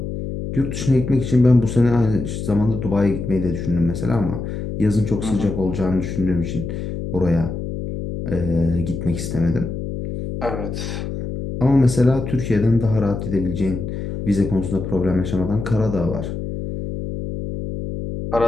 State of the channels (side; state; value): left; noise; hum, 5 dB below the sound